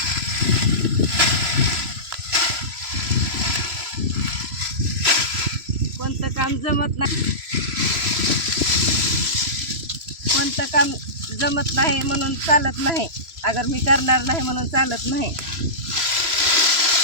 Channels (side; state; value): left; late; 3.0 ms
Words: कोणतं काम जमत नाही, कोणतं काम जमत नाही म्हणून चालत नाही. अगर मी करणार नाही म्हणून चालत नाही.